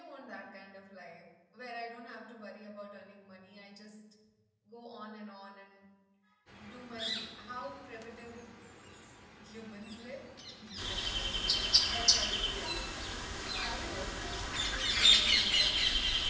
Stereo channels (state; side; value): identical; both; correlation 1.00